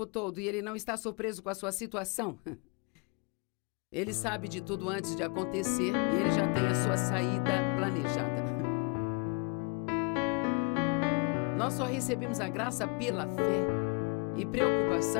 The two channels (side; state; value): right; quieter; 31.7 dB